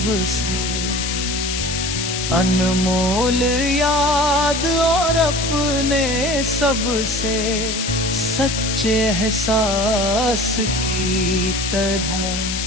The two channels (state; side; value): noise; left; hiss, 3 dB below the sound